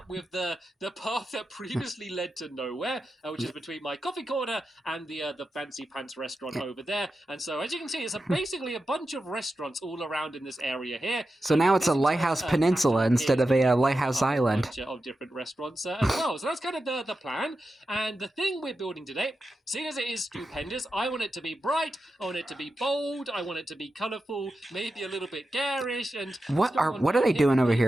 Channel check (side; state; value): both; normal; correlation 0.91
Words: with the path that previously led to nowhere, which is between my coffee corner and the fancy pants restaurant over there. And so as you can see, it's basically a bunch of restaurants all around in this area here. So now it's a lighthouse peninsula instead of a lighthouse island. A bunch of different restaurants as well. So that's kind of the plan. And the thing we're building today, seeing as it is stupendous, I want it to be bright, I want it to be bold, I want it to be colourful, maybe a little bit garish. And what are they doing over